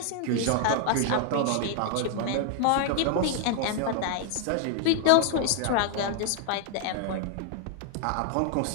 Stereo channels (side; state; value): both; different; correlation 0.00